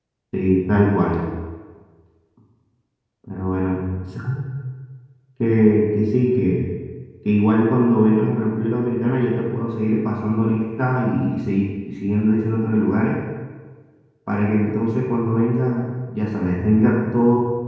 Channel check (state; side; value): identical; both; correlation 1.00